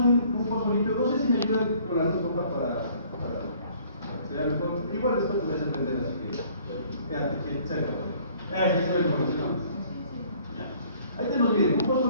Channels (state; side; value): inverted; both; correlation -0.57